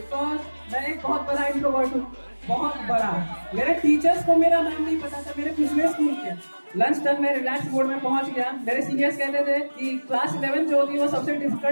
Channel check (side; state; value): both; inverted; correlation -1.00